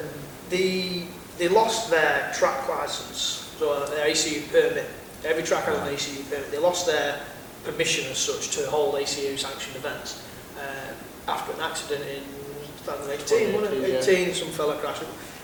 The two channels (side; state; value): both; identical; correlation 1.00